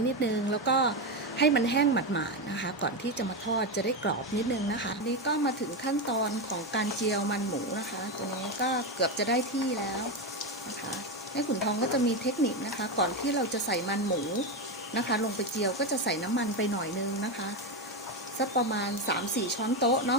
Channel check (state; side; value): normal; both; correlation 0.11